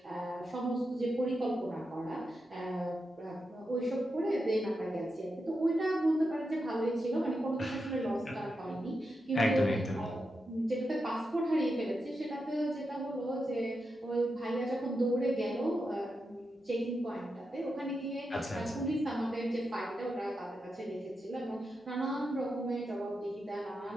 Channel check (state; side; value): normal; both; correlation 0.87